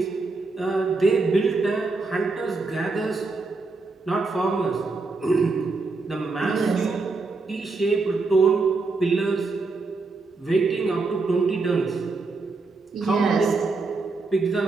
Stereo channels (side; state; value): left; quieter; 3.8 dB